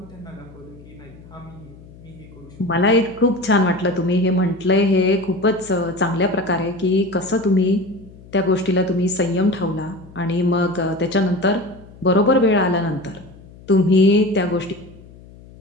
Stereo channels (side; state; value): left; noise; hum, 21 dB below the sound